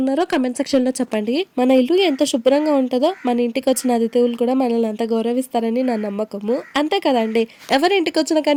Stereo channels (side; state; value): both; identical; correlation 1.00